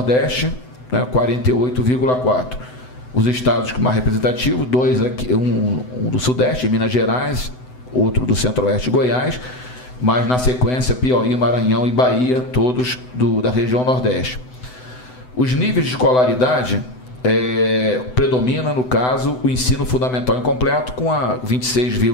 né, 48,4%. Os estados mais representativos, dois aqui, um do Sudeste, Minas Gerais, outro do Centro-Oeste, Goiás, mas na sequência Piauí, Maranhão e Bahia, todos da região Nordeste. Os níveis de escolaridade predomina, no caso, o ensino fundamental incompleto, com a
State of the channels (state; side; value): late; right; 7.9 ms